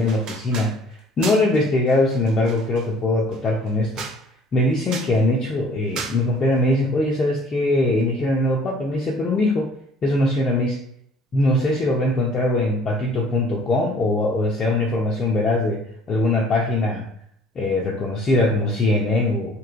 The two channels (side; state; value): both; normal; correlation 0.54